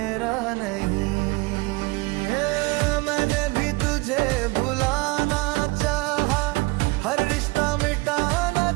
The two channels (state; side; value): quieter; left; 24.6 dB